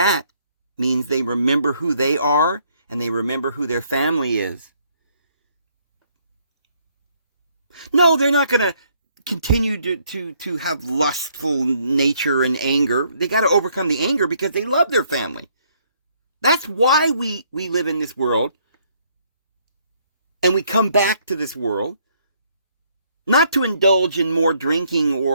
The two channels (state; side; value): inverted; both; correlation -0.68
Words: means they remember who they are and they remember who their family is. No, they're not going to continue to have lustful nature and anger. They got to overcome the anger because they love their family. That's why we live in this world. And we come back to this world. Not to indulge in more drinking